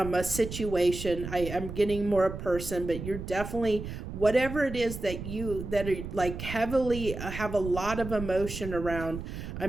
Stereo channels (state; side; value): noise; right; rumble, 8 dB below the sound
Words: situation. I'm getting more a person, but you're definitely, whatever it is that are like heavily have a lot of emotion around. I